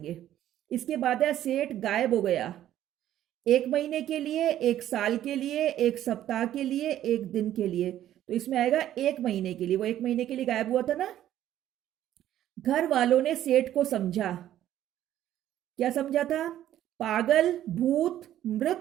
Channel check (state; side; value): quieter; left; 12.2 dB